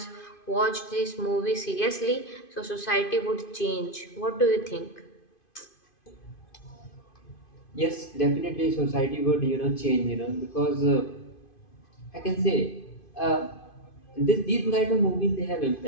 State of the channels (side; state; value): right; late; 2.5 ms